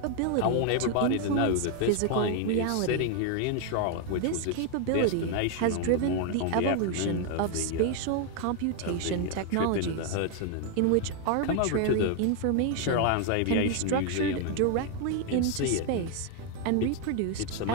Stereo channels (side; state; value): both; different; correlation 0.00